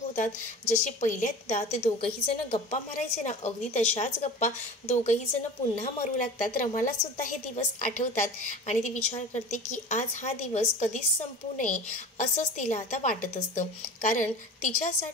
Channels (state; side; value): normal; both; correlation 0.36